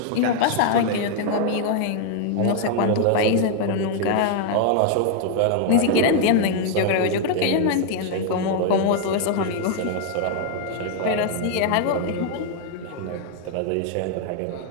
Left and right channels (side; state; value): both; different; correlation 0.00